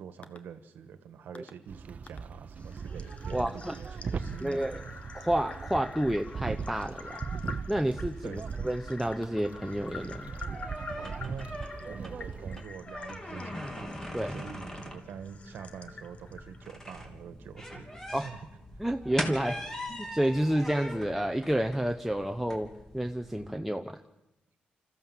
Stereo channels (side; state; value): both; normal; correlation 0.95